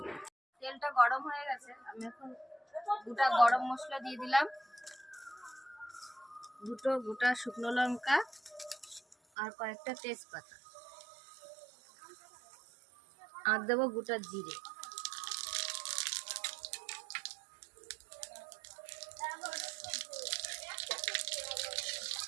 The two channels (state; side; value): drops out; left; at 9.2 s